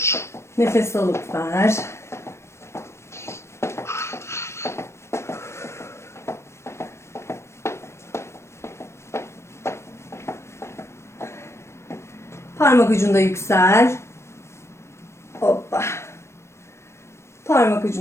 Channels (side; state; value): right; late; 0.13 ms